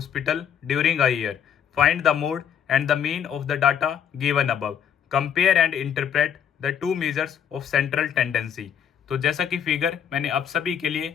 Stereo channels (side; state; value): right; quieter; 8.6 dB